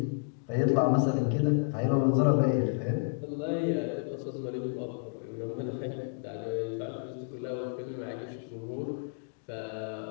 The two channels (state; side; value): silent; right; digital silence